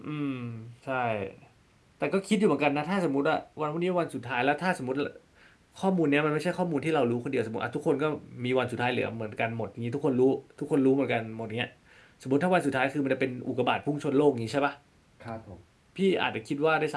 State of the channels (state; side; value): identical; both; correlation 1.00